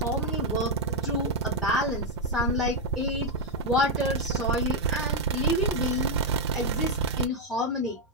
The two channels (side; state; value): both; normal; correlation 0.01